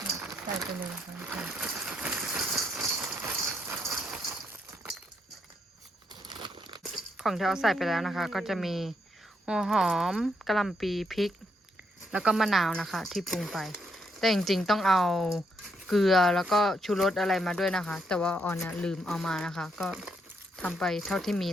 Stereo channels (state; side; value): normal; both; correlation 0.77